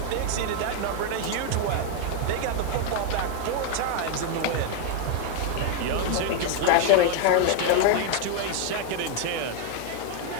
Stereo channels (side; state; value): both; different; correlation 0.01